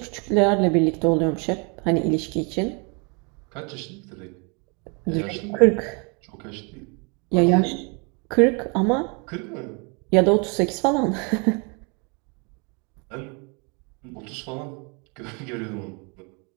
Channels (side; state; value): left; quieter; 33.4 dB